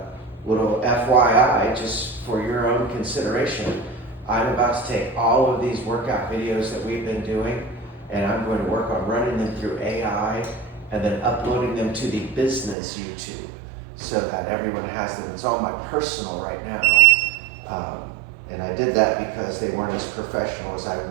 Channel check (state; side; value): drops out; left; at 12.8 s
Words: little FYI, just for your own consideration, I'm about to take all of these workout videos that we've been doing, and I'm going to work on running them through AI and then uploading them to the business YouTube so that everyone has them. It's on my personal right now. And I did that because they weren't as professional as I